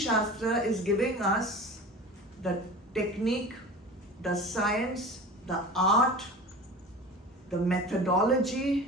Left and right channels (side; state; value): both; normal; correlation 0.36